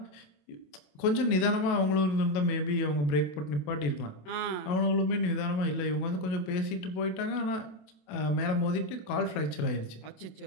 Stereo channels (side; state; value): right; late; 27 ms